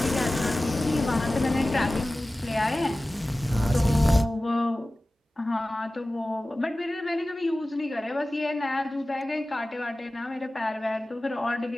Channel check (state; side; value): normal; both; correlation 0.97